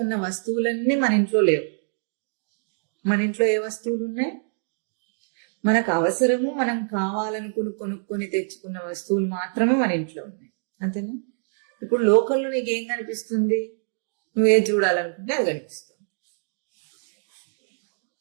ఉన్న వస్తువులన్నీ మన ఇంట్లో లేవు. మన ఇంట్లో ఏ వస్తువులు ఉన్నాయి? మనకు అవసరము, మనం కావాలనుకుని కొనుక్కొని తెచ్చుకున్న వస్తువులు మాత్రమే మన ఇంట్లో ఉన్నాయి, అంతేనా? ఇప్పుడు లోకంలో నీకేం కనిపిస్తుంది? నువ్వే చూడాలనుకుంటే అది కనిపిస్తుంది.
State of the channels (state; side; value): silent; left; digital silence